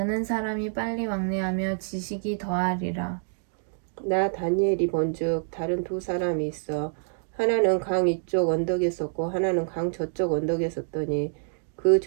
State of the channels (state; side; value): silent; left; digital silence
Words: 사람이 빨리 왕래하며 지식이 더하리라. 나 다니엘이 본즉 다른 두 사람이 있어 하나는 강 이쪽 언덕에 섰고 하나는 강 저쪽 언덕에 섰더니 그